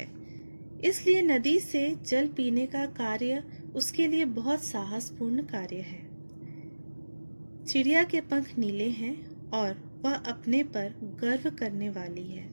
इसलिए नदी से जल पीने का कार्य उसके लिए बहुत साहसपूर्ण कार्य है। चिड़िया के पंख नीले हैं और वह अपने पर गर्व करने वाली है।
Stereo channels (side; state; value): both; inverted; correlation -1.00